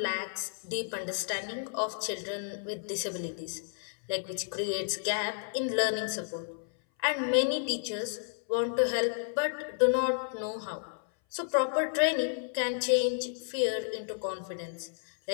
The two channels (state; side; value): silent; right; 57 dB below the other